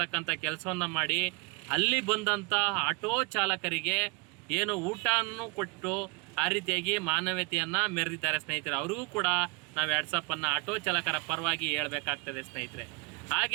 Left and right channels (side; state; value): left; quieter; 29.9 dB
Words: ಕೆಲಸವನ್ನು ಮಾಡಿ ಅಲ್ಲಿ ಬಂದಂಥ ಆಟೋ ಚಾಲಕರಿಗೆ ಏನು ಊಟವನ್ನು ಕೊಟ್ಟು ಆ ರೀತಿಯಾಗಿ ಮಾನವೀಯತೆಯನ್ನು ಮೆರೆದಿದ್ದಾರೆ ಸ್ನೇಹಿತರೆ. ಅವ್ರಿಗೂ ಕೂಡ ನಾವು 2 ಸಾವಿರನ ಆಟೋ ಚಾಲಕರ ಪರವಾಗಿ ಹೇಳಬೇಕಾಗ್ತದೆ ಸ್ನೇಹಿತರೆ.